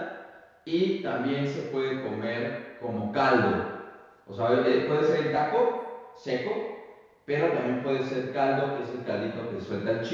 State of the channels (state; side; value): identical; both; correlation 1.00